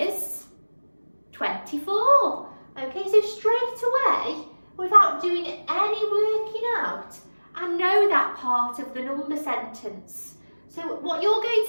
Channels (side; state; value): both; inverted; correlation -1.00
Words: 24. Okay, so straight away, without doing any working out, I know that part of the number sentence. So what you're going